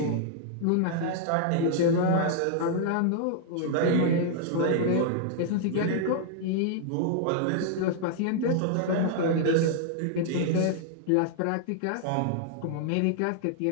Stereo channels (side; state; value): both; different; correlation -0.01